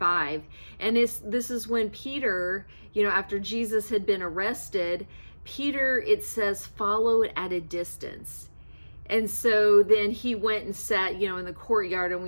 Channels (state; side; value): inverted; both; correlation -1.00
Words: And this is when Peter, after Jesus had been arrested, Peter, it says, followed at a distance. And so then he went and sat, in the courtyard, and